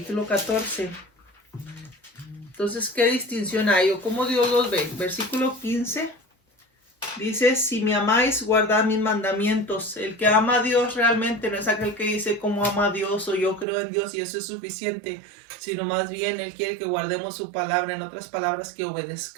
14. Entonces, ¿qué distinción hay o cómo Dios los ve? Versículo 15 Dice, si me amáis, guardad mis mandamientos. El que ama a Dios realmente no es aquel que dice cómo ama a Dios o yo creo en Dios y eso es suficiente, sino más bien Él quiere que guardemos su palabra, en otras palabras, que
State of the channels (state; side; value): drops out; left; at 13.7 s